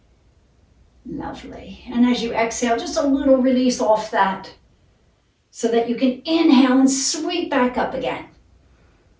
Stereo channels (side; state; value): both; identical; correlation 1.00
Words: Lovely. And as you exhale, just a little release off that so that you can inhale and sweep back up again.